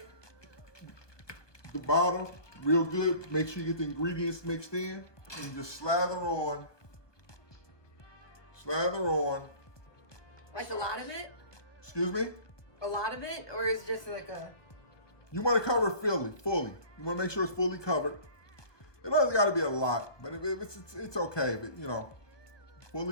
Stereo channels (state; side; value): late; right; 1.2 ms